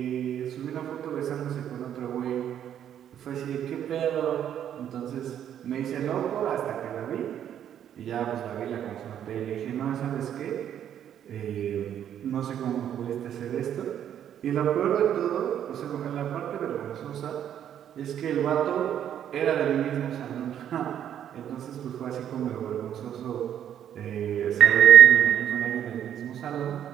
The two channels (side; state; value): left; quieter; 9.9 dB